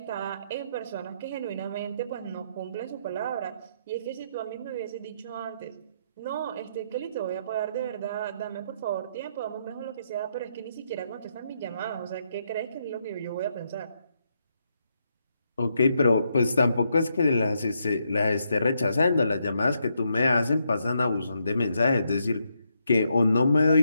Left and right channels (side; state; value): both; inverted; correlation -0.78